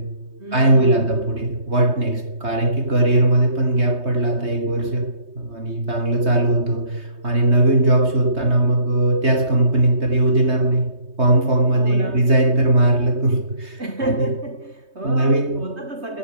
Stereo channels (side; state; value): left; late; 3.2 ms